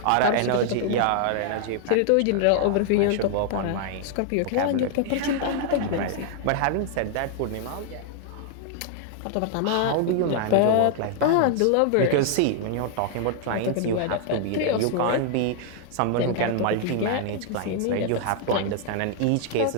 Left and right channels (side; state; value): both; different; correlation 0.00